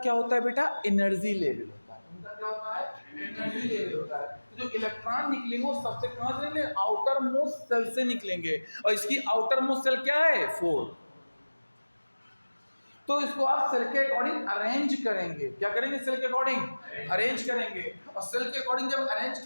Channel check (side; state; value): both; inverted; correlation -1.00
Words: होता है बेटा, एनर्जी लेवल होता है। उनका क्या होता है, एनर्जी लेवल होता है। तो जो इलेक्ट्रॉन निकलेंगे वो सबसे कहां से निकलेंगे, आउटर मोस्ट सेल से निकलेंगे, और इसकी आउटर मोस्ट सेल क्या है, 4। तो इसको आप सेल के अकॉर्डिंग अरेंज करेंगे। क्या करेंगे, सेल के अकॉर्डिंग अरेंज करेंगे। और सेल के अकॉर्डिंग जब अरेंज